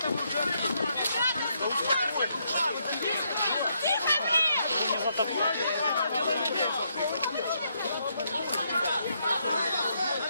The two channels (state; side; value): inverted; both; correlation -0.76